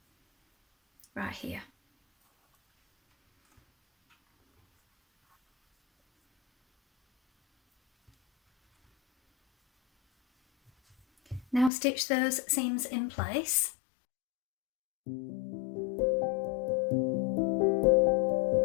right here. Now stitch those seams in place.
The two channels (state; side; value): drops out; right; at 11.7 s